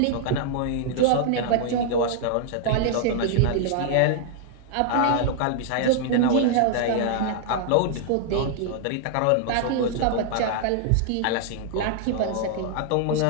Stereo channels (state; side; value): different; both; correlation -0.01